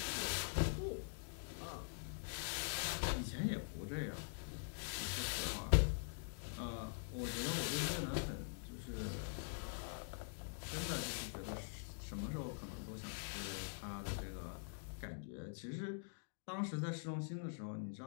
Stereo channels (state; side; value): silent; right; digital silence